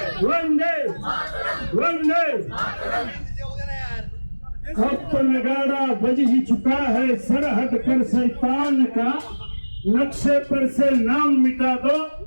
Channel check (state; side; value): inverted; both; correlation -1.00